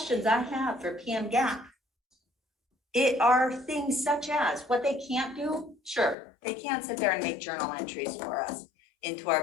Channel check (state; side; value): drops out; right; at 6.2 s